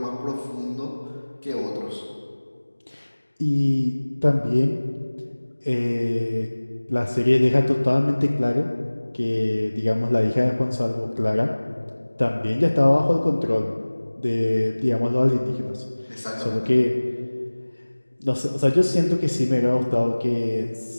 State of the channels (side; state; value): both; inverted; correlation -1.00